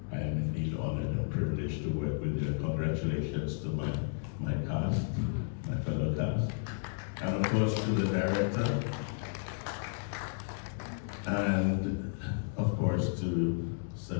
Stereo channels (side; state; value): right; silent; digital silence